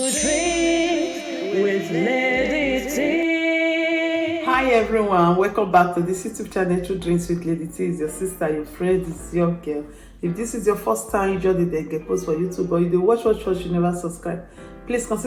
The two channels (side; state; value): both; identical; correlation 1.00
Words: Lady T. Hi everyone, welcome back to this YouTube channel, True Drinks with Lady T. Is your sister, your friend, is your girl. If this is your first time you join the get post for YouTube, or you dey watch, you never subscribe, please